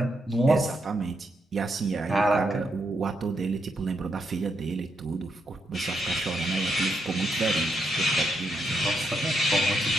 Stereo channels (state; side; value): normal; both; correlation 0.80